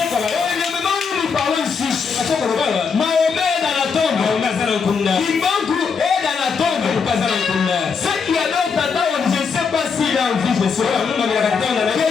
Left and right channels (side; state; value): right; quieter; 5.7 dB